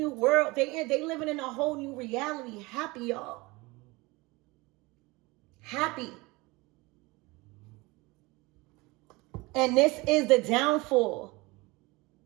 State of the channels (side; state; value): left; quieter; 23.5 dB